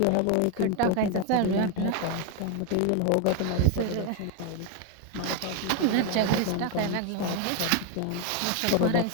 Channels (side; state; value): both; different; correlation 0.01